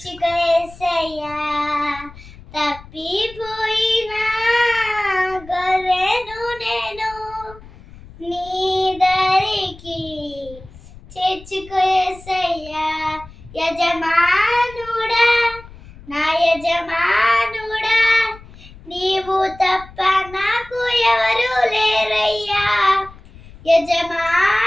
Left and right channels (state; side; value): noise; left; rumble, 20 dB below the sound